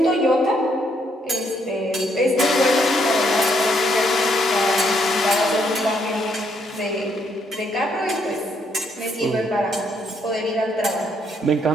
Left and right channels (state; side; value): normal; both; correlation 0.72